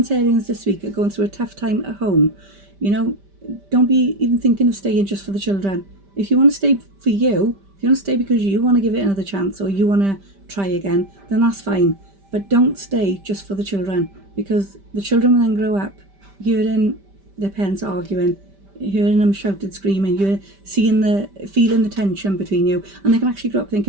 this week are going through a tough time at home, don't be even thinking of staying just for the children. If you want to stay for you, if you want to stay because you want to give it another chance or you want to try again, then that's fine. But don't stay just for the children, because the children will then grow up hearing their parents arguing, hearing them shouted, screaming, you're feeling the tension between you, and they can actually grow up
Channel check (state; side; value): late; left; 5.1 ms